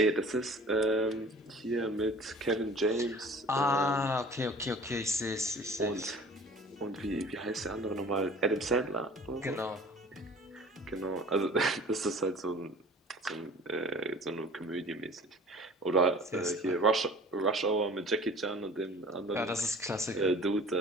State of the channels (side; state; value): both; normal; correlation 0.45